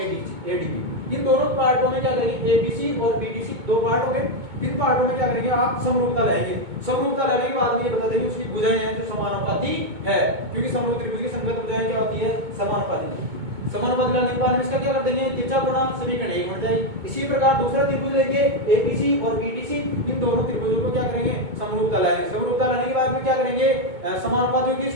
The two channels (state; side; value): late; left; 2.2 ms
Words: इन दोनों पार्टों में क्या करेंगे, एबीसी और बीडीसी दो पार्ट हो गए। इन पार्टों में क्या करेंगे, आप समरूपता लाएंगे। समरूपता लाने के बाद में ये बता देंगे उसकी भुजाएं हैं जो समानुपाती है, क्योंकि समरूप त्रिभुज की संगत भुजाएं क्या होती है, समानुपाती। समानुपाती लाने के बाद में इसका क्या कर देंगे, त्रिज्या गुणा समीकरण एक बन जाएगी। इसी प्रकार दूसरा त्रिभुज लेंगे, एबीसी और बीडीसी, इन दोनों त्रिभुजों को क्या करेंगे, समरूपता लाएंगे। समरूपता लाने के बाद में क्या करेंगे, समानुपाती होगी